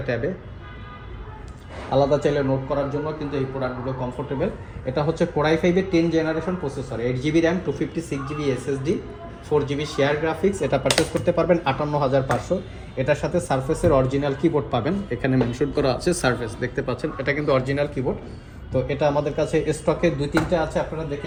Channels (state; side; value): identical; both; correlation 1.00